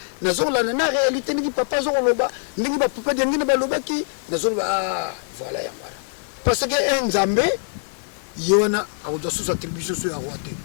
na zola na réalité ndenge papa zo loba, ndenge ba papa de ndenge ba loba ki, na zola voilà ya voilà. Parce que un Nzambe yona a doit sous attribution sur la roi te.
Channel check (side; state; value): right; silent; 63 dB below the other